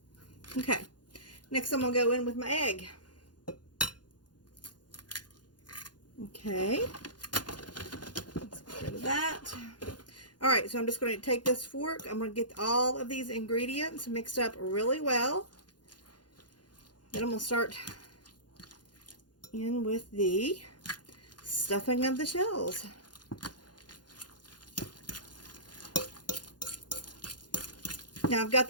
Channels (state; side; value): late; right; 0.70 ms